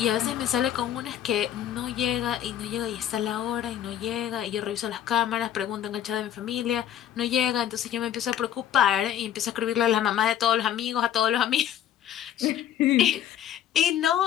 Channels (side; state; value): right; quieter; 10.6 dB